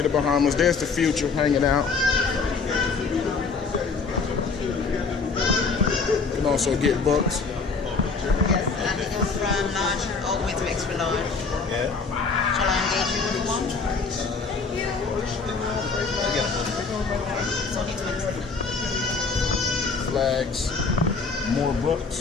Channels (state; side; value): quieter; right; 4.6 dB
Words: the Bahamas. There's the future hanging out. You can also get books. Yes, and it goes from large all the way to extra large. Yeah. Shall I engage you with one? It's only 20. Flags. More